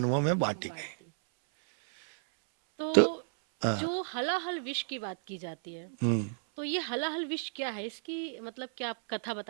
में बांटी बांट गई। दी। तो तो हाँ, जो हलाहल विष की बात की जाती है, हम्म। तो ये हलाहल विष क्या है? इसकी मतलब क्या आप कथा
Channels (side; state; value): left; silent; 56 dB below the other